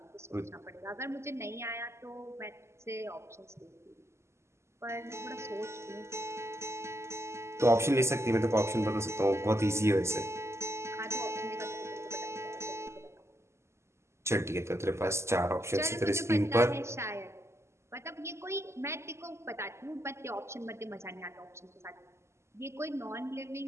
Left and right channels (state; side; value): late; left; 0.13 ms